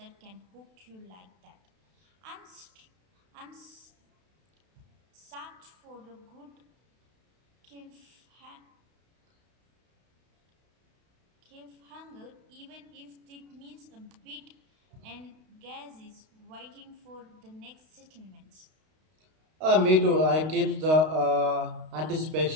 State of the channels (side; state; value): left; late; 32 ms